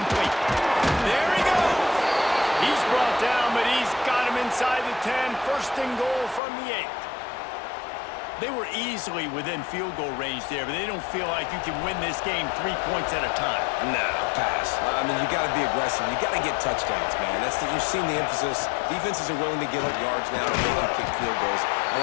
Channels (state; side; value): drops out; right; at 6.4 s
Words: There he goes. He's brought down, but he's got him inside the 10. 1st and goal from the 8. They were easily within field goal range there, but they don't feel like you can win this game 3 points at a time. No, pass. I mean, you got to be aggressive. You got to get touchdowns, man. You've seen the emphasis. Defenses are willing to give up yards now to make you kick field goals. I